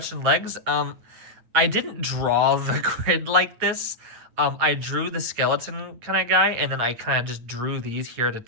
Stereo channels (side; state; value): left; late; 9.1 ms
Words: legs. I didn't draw the grid like this. I drew the skeleton kind of guy, and then I kind of just drew these here to